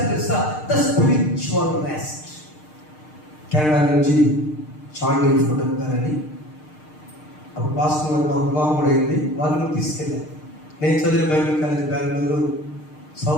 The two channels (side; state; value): right; late; 6.6 ms